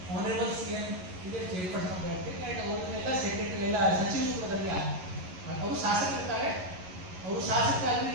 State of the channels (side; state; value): left; late; 11 ms